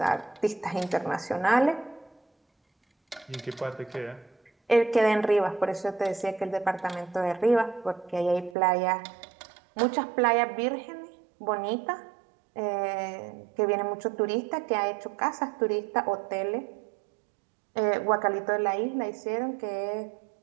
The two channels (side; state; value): left; drops out; at 8.6 s